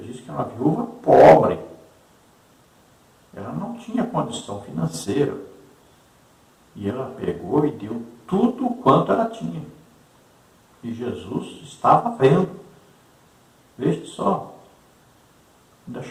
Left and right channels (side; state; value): both; identical; correlation 1.00